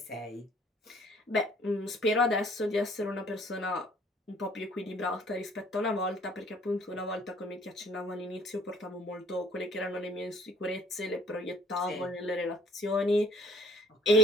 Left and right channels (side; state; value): both; normal; correlation 0.57